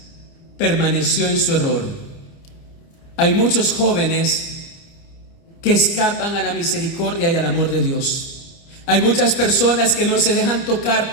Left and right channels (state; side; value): late; right; 29 ms